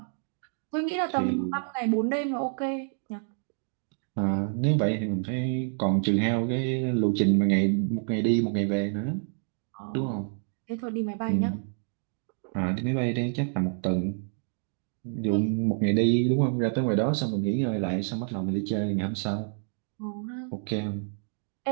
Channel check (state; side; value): silent; left; 59 dB below the other